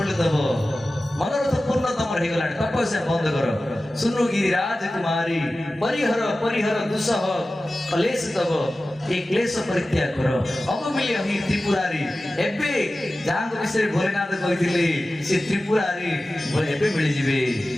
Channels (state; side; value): normal; both; correlation 0.95